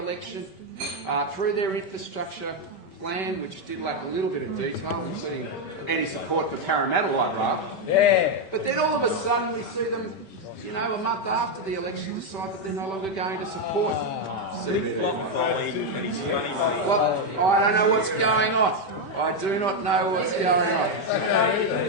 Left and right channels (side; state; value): right; late; 5.2 ms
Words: through their infrastructure plan, which did lack a little bit of detail, including any support for Parramatta light rail. Yeah. But then all of a sudden we see them, a month after the election, decide that they're no longer going to support CBD light rail. Well, I don't know what's going on. I do not know what's going on.